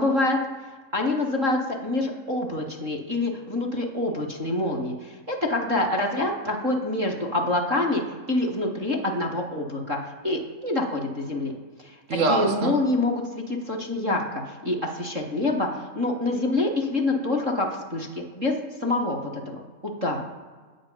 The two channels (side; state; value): left; late; 3.7 ms